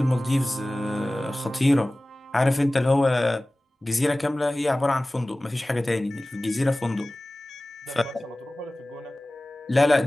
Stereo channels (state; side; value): normal; both; correlation 0.98